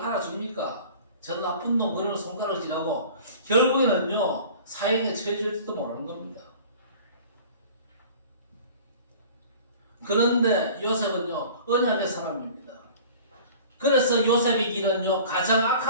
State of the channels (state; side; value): inverted; both; correlation -0.44